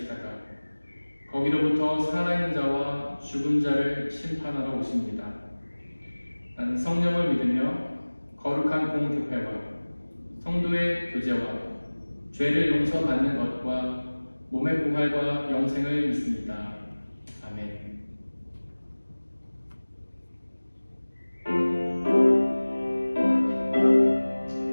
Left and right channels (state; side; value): inverted; both; correlation -1.00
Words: 거기로부터 살아있는 자와 죽은 자를 심판하러 오십니다. 나는 성령을 믿으며 거룩한 공교회와 성도의 교제와 죄를 용서받는 것과 몸의 부활과 영생을 믿습니다. 아멘.